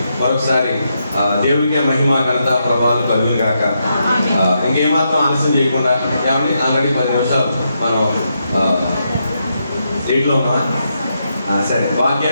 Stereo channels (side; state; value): both; inverted; correlation -0.82